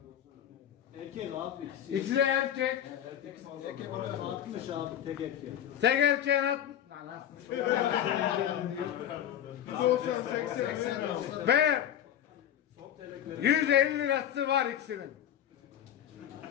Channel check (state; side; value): quieter; right; 10.6 dB